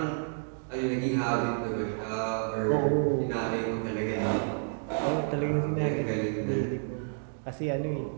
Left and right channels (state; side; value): silent; left; digital silence